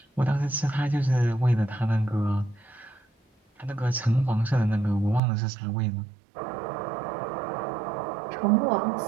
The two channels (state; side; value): drops out; left; at 5.2 s